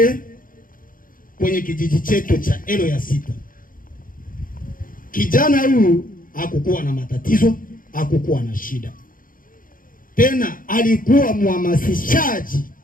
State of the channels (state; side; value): late; right; 0.40 ms